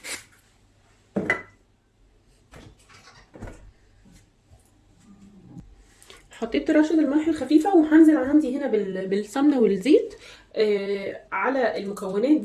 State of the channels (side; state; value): both; identical; correlation 1.00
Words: حطيت رشه الملح الخفيفه، وهنزل عندي هنا بالسمنه والزيت على المكونات